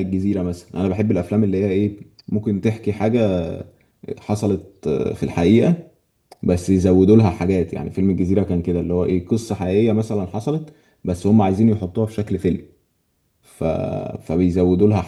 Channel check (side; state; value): both; identical; correlation 1.00